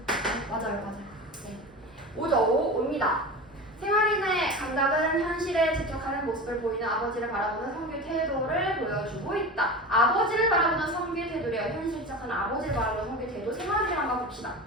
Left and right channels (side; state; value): both; normal; correlation 0.29